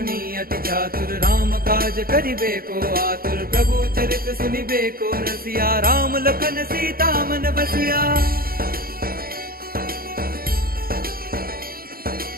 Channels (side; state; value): left; late; 0.43 ms